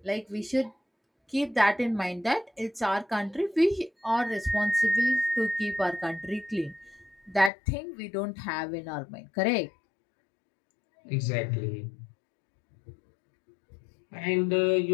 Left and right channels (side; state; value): right; drops out; at 7.5 s